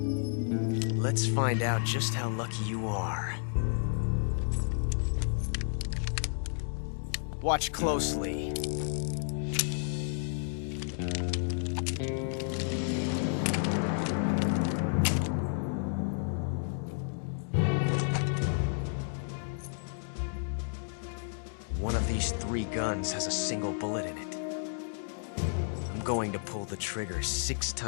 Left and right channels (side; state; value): right; silent; digital silence